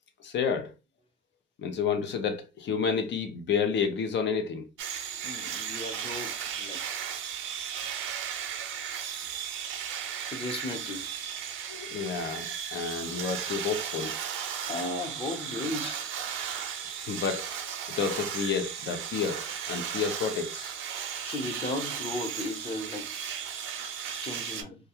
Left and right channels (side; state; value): both; normal; correlation 0.19